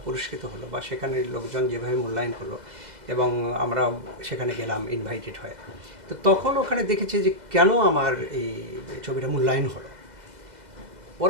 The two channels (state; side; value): late; left; 2.0 ms